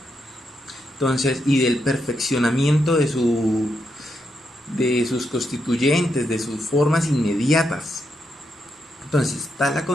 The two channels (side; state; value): both; normal; correlation 0.82